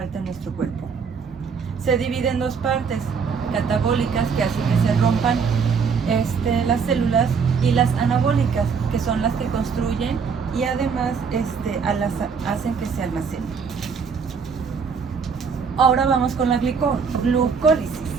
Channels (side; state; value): left; quieter; 5.9 dB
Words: en nuestro cuerpo. Se divide en dos partes, catabólicas, que hacen que se rompan las células, y las anabólicas, que son las que construyen y además hacen que se almacenen. Ahora vamos con la glucólisis.